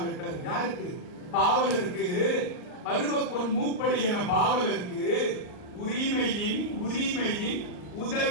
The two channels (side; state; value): right; late; 39 ms